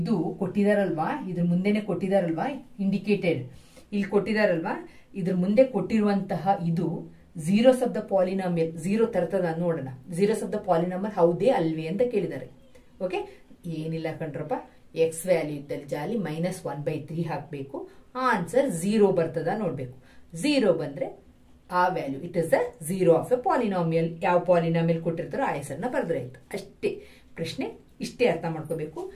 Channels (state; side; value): identical; both; correlation 1.00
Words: ಕೊಟ್ಟಿದಾರಲ್ವಾ, ಇದ್ರ ಮುಂದೆನೆ ಕೊಟ್ಟಿದಾರಲ್ವಾ ಇಂಡಿಕೇಟೆಡ್, ಇಲ್ಲಿ ಕೊಟ್ಟಿದಾರಲ್ವಾ, ಇದ್ರ ಮುಂದೆ ಕೊಟ್ಟಿರುವಂತಹ ಇದು zeros ಆಫ್ ದ ಪಾಲಿನಾಮಿಯಲ್. 0 ತರ್ತದ ನೋಡೋಣ. zeros ಆಫ್ ದ ಪಾಲಿನಾಮಿಯಲ್ ಹೌದೇ ಅಲ್ವೇ ಅಂತ ಕೇಳಿದ್ದಾರೆ. ಓಕೆ, ಏನಿಲ್ಲ ಕಣ್ರಪ್ಪ, ಎಕ್ಸ್ ವ್ಯಾಲ್ಯೂ ಇದ್ದಲ್ಲಿ ಜಾಲಿ -1/3 ಹಾಕಬೇಕು. ಆನ್ಸರ್ 0 ಬರ್ತದ ನೋಡ್ಬೇಕು. 0 ಬಂದ್ರೆ ಆ value it is the zero of a polynomial. ಯಾವ ಪಾಲಿನಾಮಿಯಲ್ ಕೊಟ್ಟಿರ್ತಾರೋ ಆ ಹೆಸರನ್ನ ಬರೆದ್ರೆ ಆಯ್ತು ಅಷ್ಟೇ. ಪ್ರಶ್ನೆ ಇಷ್ಟೇ ಅರ್ಥ ಮಾಡ್ಕೋಬೇಕು.